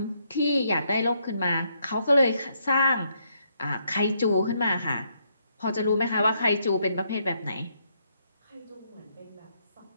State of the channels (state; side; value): inverted; both; correlation -0.75